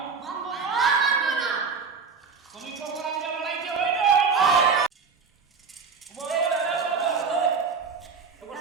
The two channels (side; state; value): left; quieter; 5.4 dB